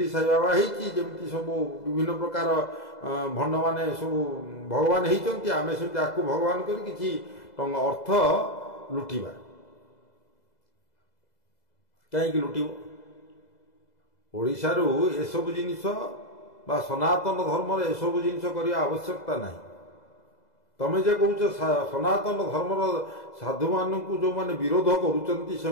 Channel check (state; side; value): late; right; 2.0 ms